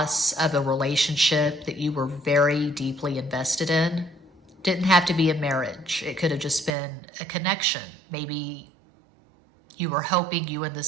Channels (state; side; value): drops out; left; at 6.8 s